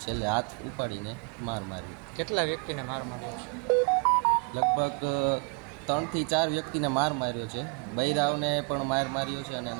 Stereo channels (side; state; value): left; quieter; 31.6 dB